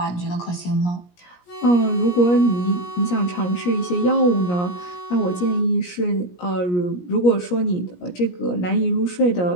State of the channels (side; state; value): right; late; 17 ms